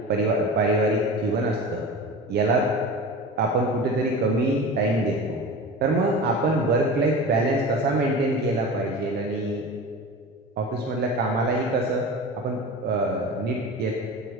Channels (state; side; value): normal; both; correlation 0.32